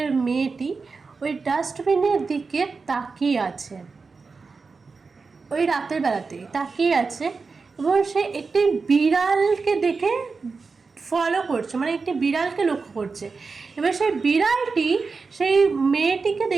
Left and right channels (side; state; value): left; quieter; 4.5 dB